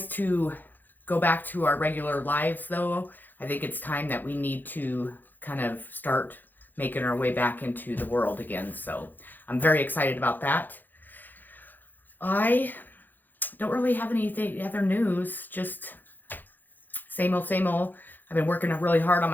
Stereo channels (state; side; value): late; right; 0.087 ms